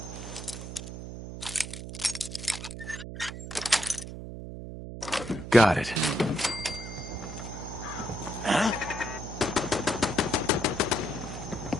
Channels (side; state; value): right; noise; hum, 9 dB below the sound